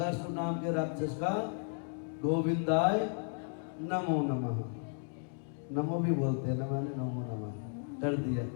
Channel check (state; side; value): silent; right; 55 dB below the other